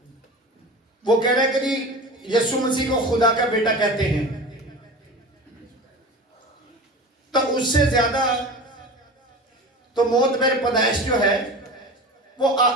वो कह रहा है कि यीशु मसीह को खुदा का बेटा कहते हैं। तो उससे ज्यादा तो मोतबर पैदाइश जो है वो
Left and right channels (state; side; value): normal; both; correlation 0.33